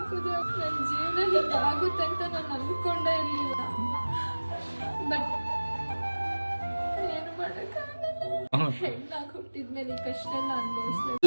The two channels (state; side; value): inverted; both; correlation -1.00